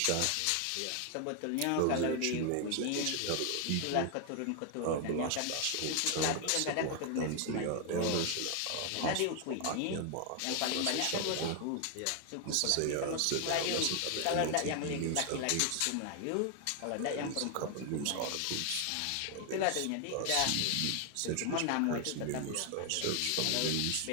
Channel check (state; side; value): different; both; correlation 0.00